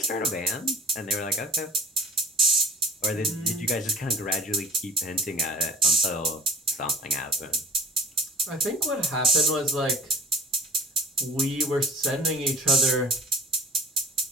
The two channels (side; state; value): both; normal; correlation 0.45